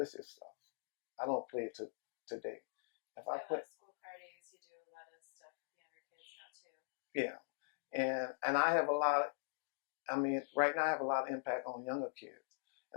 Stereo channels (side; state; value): right; silent; digital silence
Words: stuff. I don't play it today. If I play school parties, you do a lot of stuff with younger kids now too. Yeah, and I have a lot. Right now I have a lot of impact on younger kids,